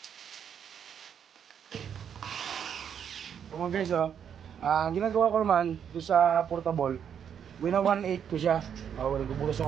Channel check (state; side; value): quieter; left; 8.2 dB